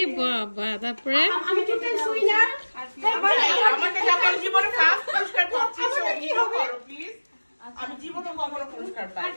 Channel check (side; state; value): both; inverted; correlation -1.00